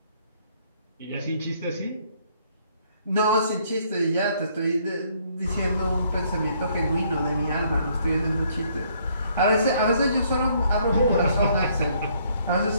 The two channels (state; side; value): inverted; both; correlation -0.66